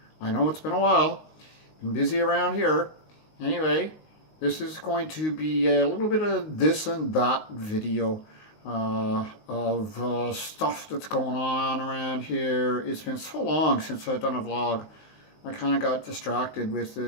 I know it's been a while, been busy around here. Anyway, this is going to be a little bit of this and that video of stuff that's going on around here. It's been so long since I've done a vlog. I kind of got distracted with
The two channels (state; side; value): late; right; 19 ms